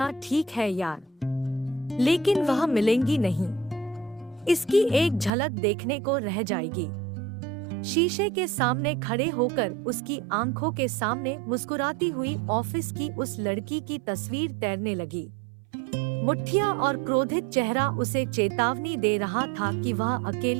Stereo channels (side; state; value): left; drops out; at 5.3 s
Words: ठीक है यार, लेकिन वह मिलेंगी नहीं। इसकी एक झलक देखने को रह जाएगी। शीशे के सामने खड़े होकर उसकी आंखों के सामने मुस्कुराती हुई ऑफिस की उस लड़की की तस्वीर तैरने लगी। मुठ्ठियां और क्रोधित चेहरा उसे चेतावनी दे रहा था कि वह